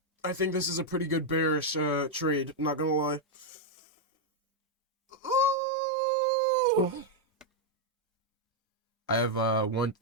I think this is a pretty good bearish trade, not gonna lie. Ooh. I have 1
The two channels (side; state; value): both; normal; correlation -0.01